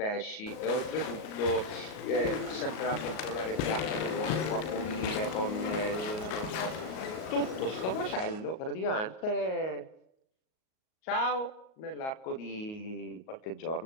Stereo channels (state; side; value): late; right; 38 ms